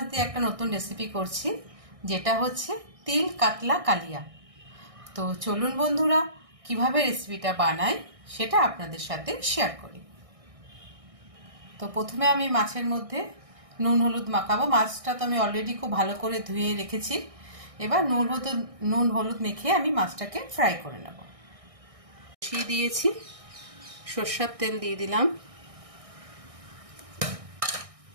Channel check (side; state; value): left; late; 1.6 ms